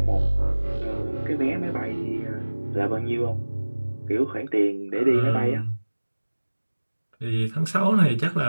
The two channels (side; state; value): both; inverted; correlation -1.00